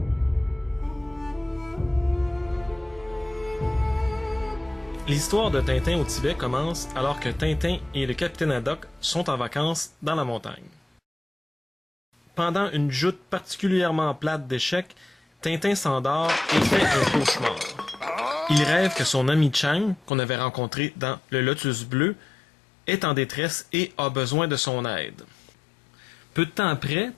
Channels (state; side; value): drops out; right; at 20.1 s